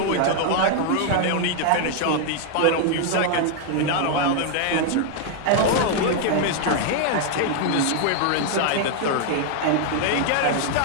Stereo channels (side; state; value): both; different; correlation 0.00